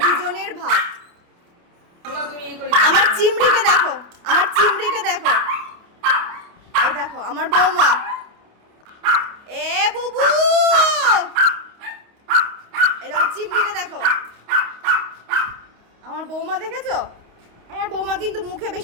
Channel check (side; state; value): left; late; 28 ms